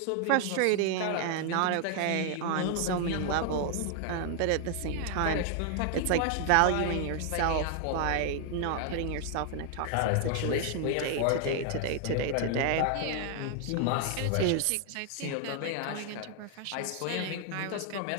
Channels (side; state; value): both; different; correlation 0.00